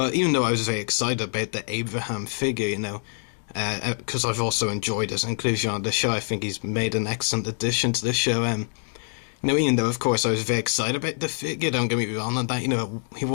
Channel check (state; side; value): silent; right; digital silence